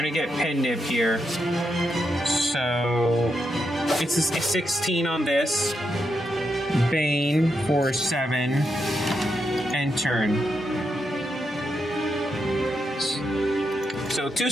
get Pen Nib here. So, it's a 16 on this. Bane for 7. And turn. So 2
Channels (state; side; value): normal; both; correlation 0.83